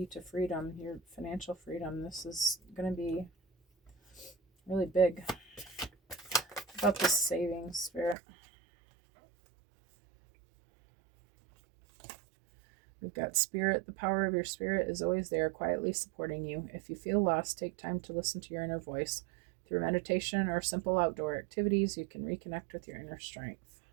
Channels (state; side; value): drops out; left; at 8.2 s